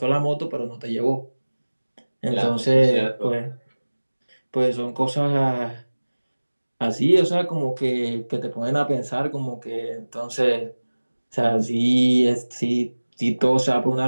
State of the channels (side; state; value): both; inverted; correlation -1.00